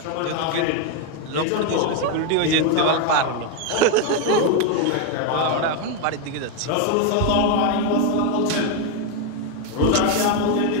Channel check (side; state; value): both; different; correlation 0.01